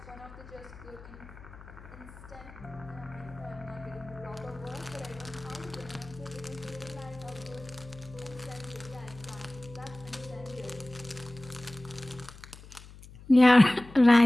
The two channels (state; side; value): noise; left; hum, 18 dB below the sound